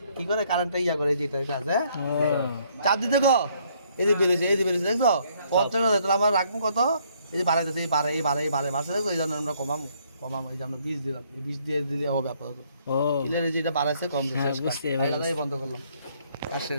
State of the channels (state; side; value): inverted; both; correlation -0.67